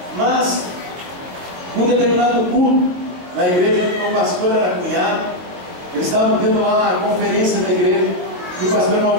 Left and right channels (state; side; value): late; left; 23 ms